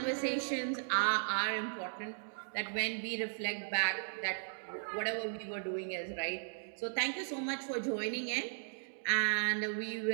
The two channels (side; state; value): left; silent; digital silence